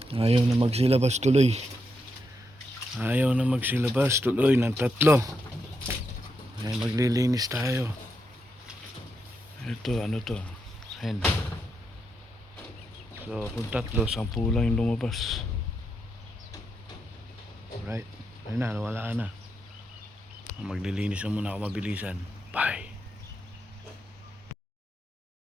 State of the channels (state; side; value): normal; both; correlation 0.83